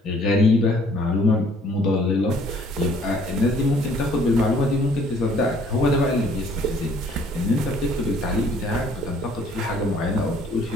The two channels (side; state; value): both; normal; correlation 0.59